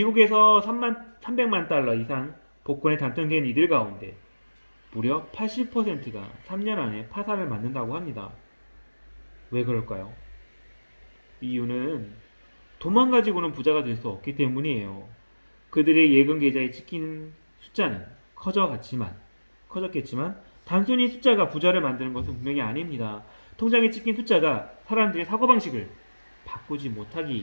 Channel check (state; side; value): inverted; both; correlation -1.00